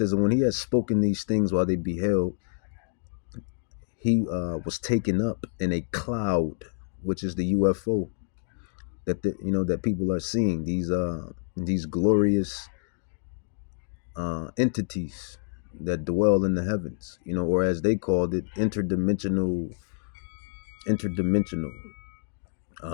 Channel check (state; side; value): silent; right; digital silence